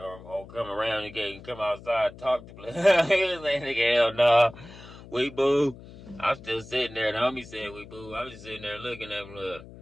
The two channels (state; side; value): noise; left; hum, 18 dB below the sound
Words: come around the gate and come outside and talk to blood. He was like, nigga, hell no. We boo. I'm still sitting there. The homie said we boo. I was just sitting there looking at blood.